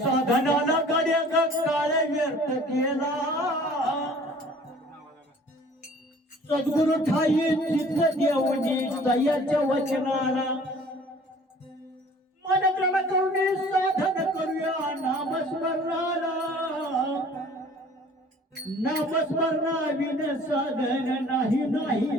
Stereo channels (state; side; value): normal; both; correlation 0.51